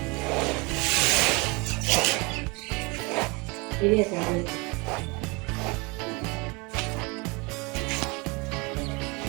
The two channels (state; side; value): quieter; left; 27.9 dB